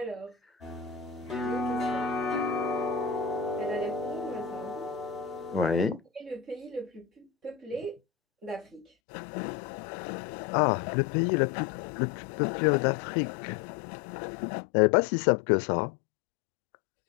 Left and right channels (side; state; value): right; drops out; at 8.8 s